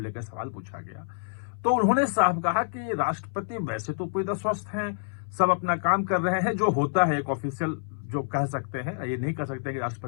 सवाल पूछा गया, तो उन्होंने साफ कहा कि राष्ट्रपति वैसे तो पूरी तरह स्वस्थ हैं, सब अपना काम कर रहे हैं, जो होता है एक ऑफिशियल जो कह सकते हैं, ये नहीं कह सकते कि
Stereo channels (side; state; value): right; silent; 60 dB below the other